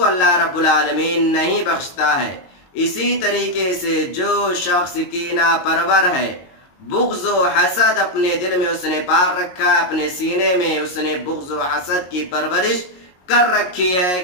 اللہ رب العالمین نہیں بخشتا ہے۔ اسی طریقے سے جو شخص کینہ پرور ہے، بغض و حسد اپنے دل میں اس نے پال رکھا ہے، اپنے سینے میں اس نے بغض و حسد کی پرورش کر رکھی ہے،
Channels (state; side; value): late; right; 22 ms